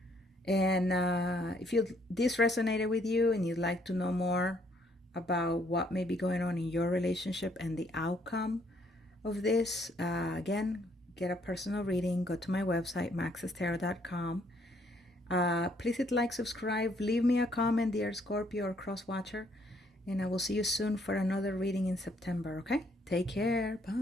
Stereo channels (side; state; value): both; normal; correlation 0.68